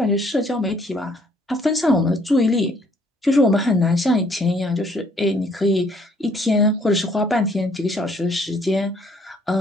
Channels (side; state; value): both; normal; correlation 0.63